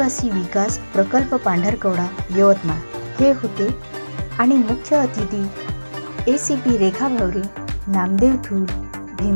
विकास प्रकल्प पांढरकवडा यवतमाळ हे होते आणि मुख्य अतिथी ACP Rekha Bhaware, Namdev Thul,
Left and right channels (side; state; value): both; inverted; correlation -1.00